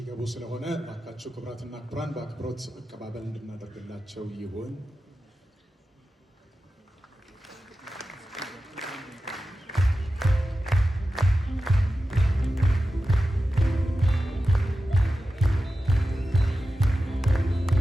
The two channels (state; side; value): normal; both; correlation 0.93